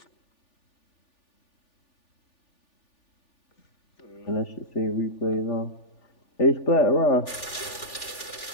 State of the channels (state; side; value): late; right; 3.4 ms